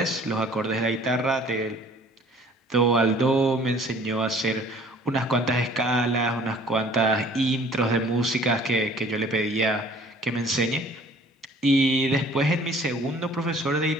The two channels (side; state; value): both; normal; correlation 0.53